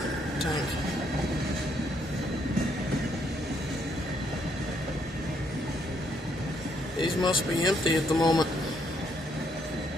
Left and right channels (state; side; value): normal; both; correlation 0.72